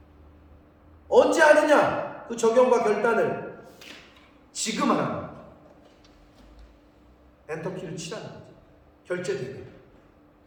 언제 하느냐? 그 적용과 결단을 지금 하라는 거예요. 엔터키를 치라는 거죠. 결제되게.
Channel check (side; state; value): both; identical; correlation 1.00